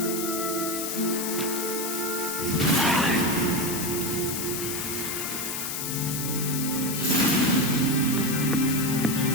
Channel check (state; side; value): noise; left; hiss, 3 dB below the sound